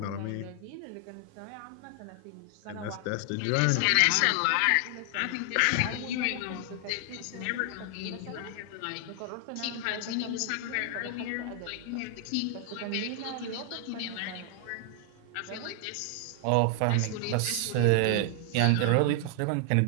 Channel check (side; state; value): both; different; correlation 0.00